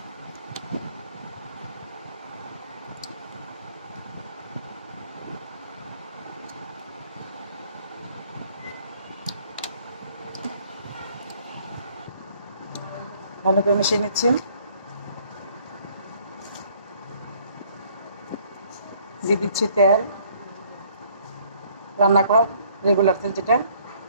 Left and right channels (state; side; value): inverted; both; correlation -0.61